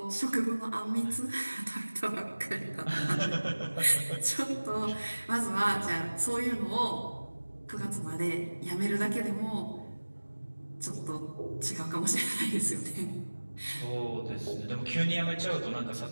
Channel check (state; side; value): inverted; both; correlation -1.00